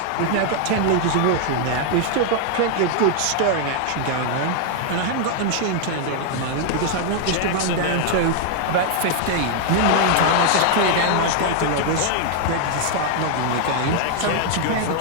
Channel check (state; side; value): different; both; correlation 0.00